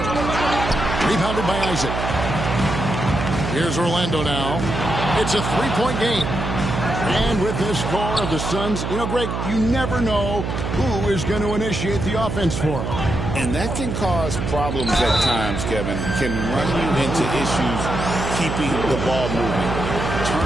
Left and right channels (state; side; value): noise; right; hum, 3 dB below the sound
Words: Rebounded by Isaac. Here's Orlando now. It's a three-point game. And with this score of the Suns, you know, Greg, you never know who is going to initiate the offense for them. And that can cause problems at times, Kevin. Can run you into issues keeping the ball moving.